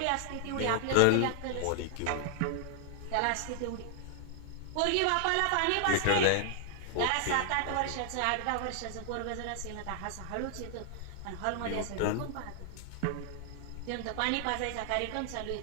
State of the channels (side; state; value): both; different; correlation 0.00